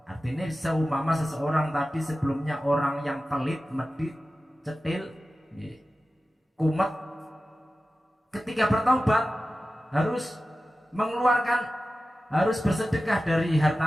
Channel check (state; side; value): normal; both; correlation 0.95